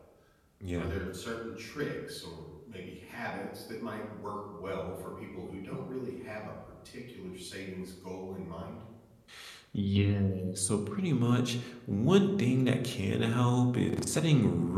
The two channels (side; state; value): both; identical; correlation 1.00